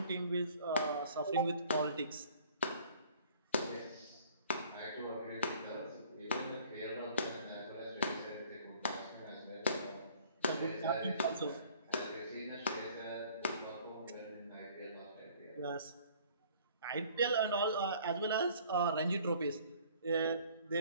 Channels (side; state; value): both; inverted; correlation -0.54